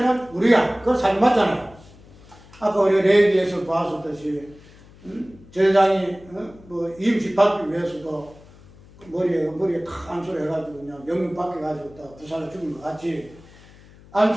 우리야. 그거 사실 맞잖아요. 아까 우리가 레위기에서 봤었듯이 제사장이 뭐 임시 받기 위해서도 머리에 탁 안수를 해가지고 그냥 영문 받게가지고 다 부살을 죽인 것 같이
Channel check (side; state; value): left; noise; hum, 23 dB below the sound